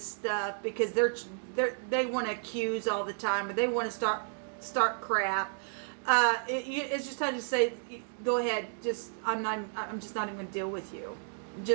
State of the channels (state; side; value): silent; left; digital silence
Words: stuff because they want to accuse all the time or they want to start crap. It's just time to say, go ahead. I'm just not even going to deal with you. I'm